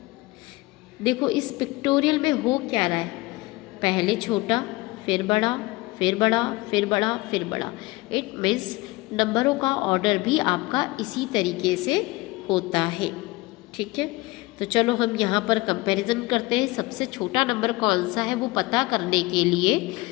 देखो इस पिक्टोरियल में हो क्या रहा है, पहले छोटा, फिर बड़ा, फिर बड़ा, फिर बड़ा, फिर बड़ा। इट मीन्स नंबरों का ऑर्डर भी आपका इसी तरीके से होता है। ठीक है, तो चलो हम यहाँ पर कंपैरिजन करते हैं। सबसे छोटा नंबर कौन सा है वो पता करने के लिए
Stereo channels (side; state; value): right; quieter; 21.8 dB